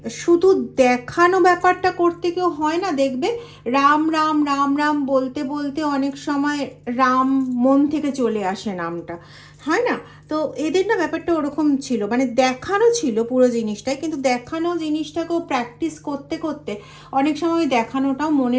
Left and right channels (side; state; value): both; identical; correlation 1.00